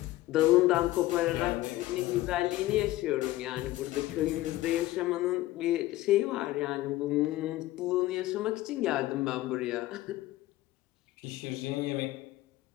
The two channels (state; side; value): quieter; right; 16.6 dB